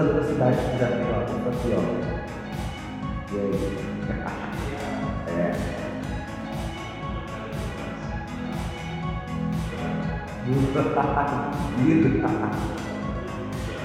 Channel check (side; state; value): both; identical; correlation 1.00